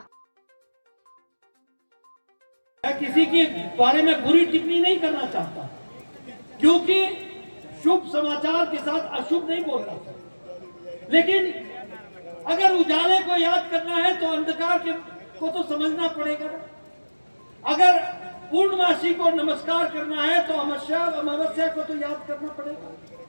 मैं किसी के बारे में बुरी टिप्पणी नहीं करना चाहता, क्योंकि शुभ समाचार के साथ अशुभ नहीं बोलना चाहिए। लेकिन अगर उजाले को याद करना है तो अंधकार को तो समझना पड़ेगा। अगर पूर्णमासी को नमस्कार करना है तो अमावस्या को तो याद करना पड़ेगा।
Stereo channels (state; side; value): inverted; both; correlation -1.00